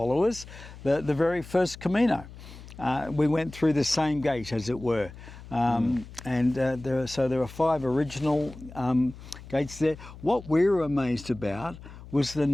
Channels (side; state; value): left; noise; hum, 16 dB below the sound